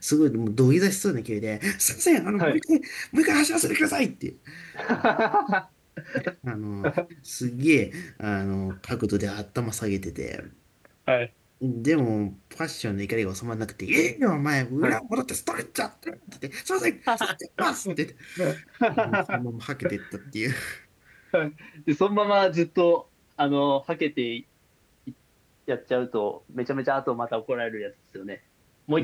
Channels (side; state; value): both; identical; correlation 1.00